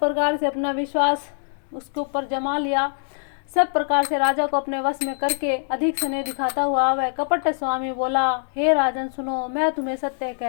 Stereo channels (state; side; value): silent; right; digital silence